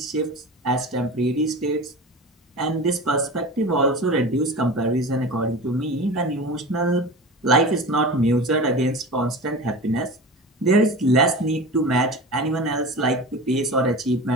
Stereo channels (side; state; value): both; normal; correlation 0.32